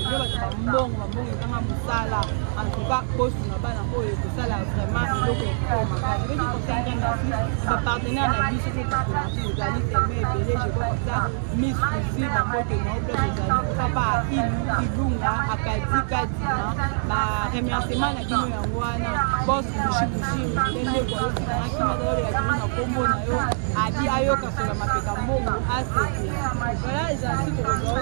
va faire bon musala en tout cas poste na bana ko et ça là vraiment le ko ma ka je vais dire comme ça ma partenaire na vie sur le partenaire vous allez fermer et belé je vois comme ça miss aussi ma côté non plus vous allez papa ilunga akadi kadima ba remerciement na kino ya ngwana boss mushibushi ndende kwa yosi na kima dole la kino na kombo na yo abi ayo kasola mapeka mbongo asete voilà les articles que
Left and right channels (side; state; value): left; silent; digital silence